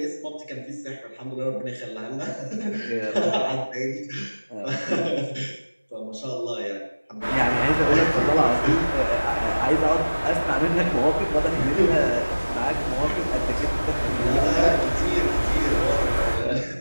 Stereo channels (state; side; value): inverted; both; correlation -1.00